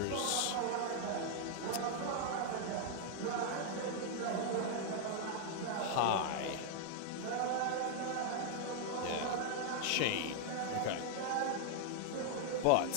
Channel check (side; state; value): both; different; correlation 0.00